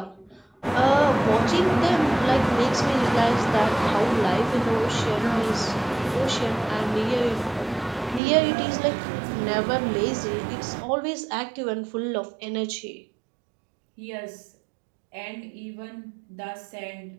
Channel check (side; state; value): left; drops out; at 8.2 s